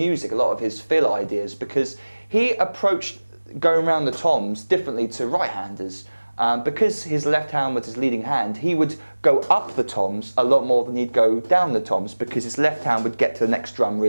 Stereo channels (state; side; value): inverted; both; correlation -1.00